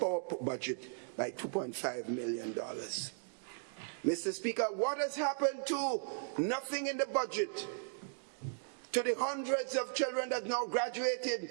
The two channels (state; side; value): silent; left; digital silence